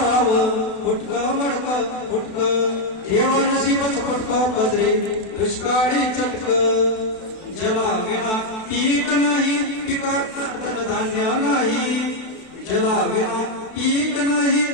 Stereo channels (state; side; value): late; right; 32 ms